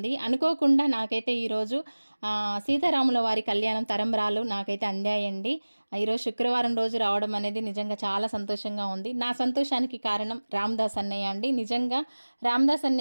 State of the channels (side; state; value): both; inverted; correlation -1.00